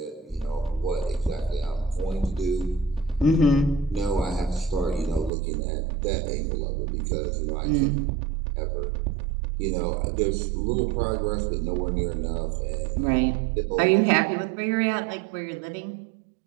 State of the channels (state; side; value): drops out; left; at 5.3 s